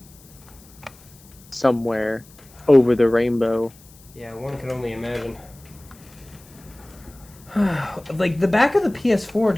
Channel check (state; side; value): noise; left; hiss, 25 dB below the sound